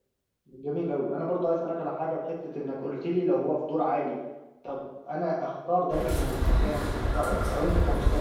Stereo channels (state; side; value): identical; both; correlation 1.00